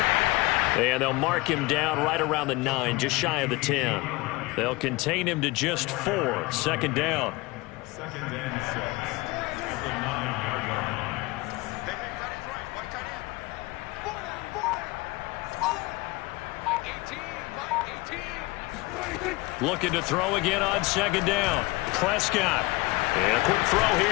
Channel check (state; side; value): quieter; right; 22.4 dB